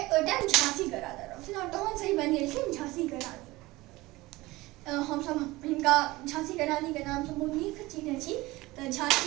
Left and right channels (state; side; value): quieter; left; 20.0 dB